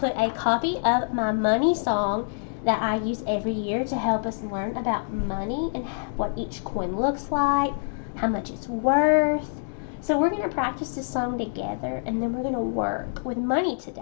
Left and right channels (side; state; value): right; silent; digital silence